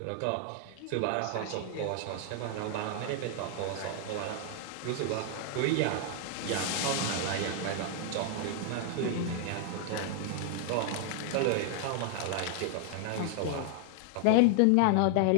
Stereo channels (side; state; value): both; different; correlation 0.00